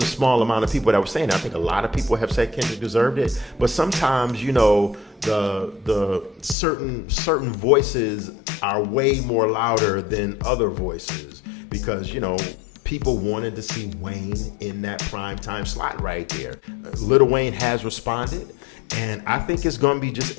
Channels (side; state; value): right; drops out; at 6.6 s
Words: a small amount of people that were saying that. I think a lot of people have said Kendrick deserved it. But sometimes, you know, the certain voices are way more louder than other voices because, you know, people wanted to see Wayne in that primetime slot right there. Lil Wayne has responded, and I think it's going to be